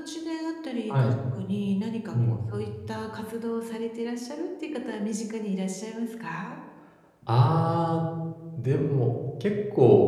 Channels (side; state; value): both; identical; correlation 1.00